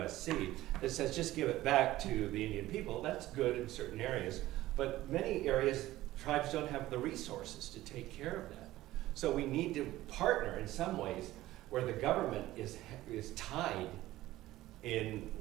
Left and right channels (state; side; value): quieter; left; 16.0 dB